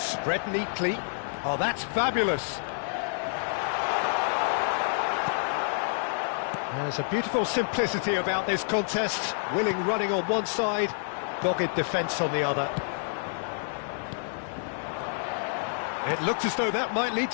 neatly. Oh, that's fabulous. There's a beautiful simplicity about this contest. Willing running on one side, dogged defence on the other. It looked as though that might lead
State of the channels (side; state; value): right; silent; digital silence